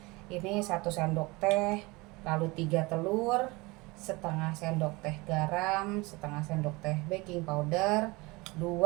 Ini 1 sendok teh, lalu 3 telur, setengah sendok teh garam, setengah sendok teh baking powder,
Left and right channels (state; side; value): quieter; left; 23.9 dB